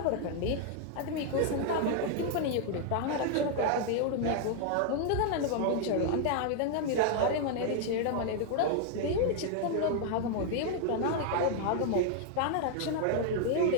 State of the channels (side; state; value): both; different; correlation 0.00